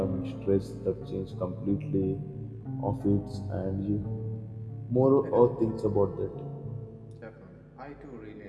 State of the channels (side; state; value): both; identical; correlation 1.00